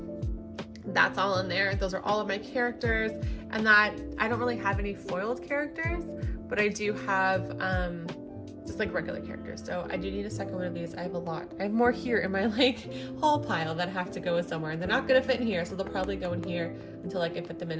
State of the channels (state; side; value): identical; both; correlation 1.00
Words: That's all in there. Those are all of my characters. And that, I don't really have any foiled characters, but I do have just like regular characters. So I do need a second one of these. I have a lot. I have more here in my like haul pile that have to go somewhere, and they're not gonna fit in here, so they'll probably go in here until I can fit them in